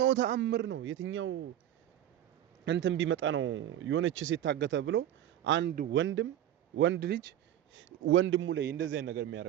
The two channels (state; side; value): quieter; left; 11.6 dB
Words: ተአምር ነው የትኛው እንትን ቢመጣ ነው የሆነች ሴት ታገተ ብሎ አንድ ወንድ ልጅ ወንድሙ ላይ እንደዚህ አይነት ነገር